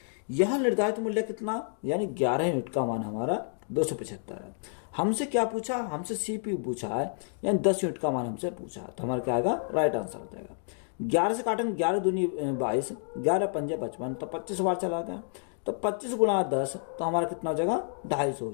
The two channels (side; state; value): right; silent; 58 dB below the other